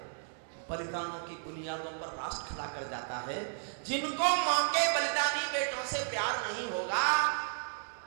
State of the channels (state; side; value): silent; left; digital silence